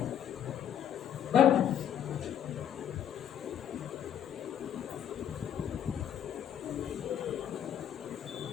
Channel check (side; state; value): right; quieter; 9.6 dB